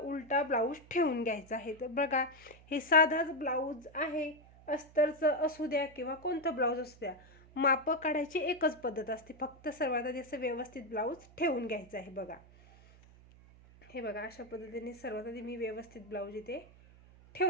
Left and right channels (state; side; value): noise; right; hum, 23 dB below the sound